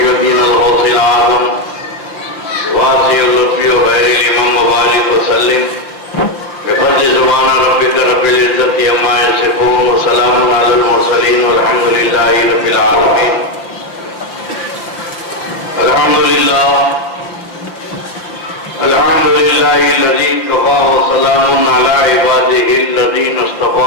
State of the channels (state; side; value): late; right; 5.7 ms